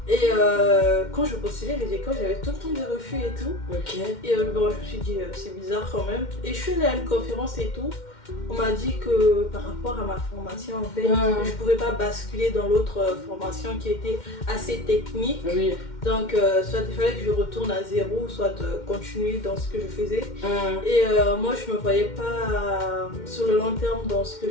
Et quand je postulais les écoles, j'avais tout le temps des refus et tout. Et bon, je me suis dit c'est bizarre quand même. Et je suis allée à une conférence et tout. On m'a dit que par rapport à ma formation en fait, je pouvais pas basculer dans l'autre formation qui était assez technique. Donc soit il fallait que je retourne à zéro, soit continuer dans ce que je faisais. Et moi je me voyais pas sur le long terme dans ce que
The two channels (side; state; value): right; late; 2.1 ms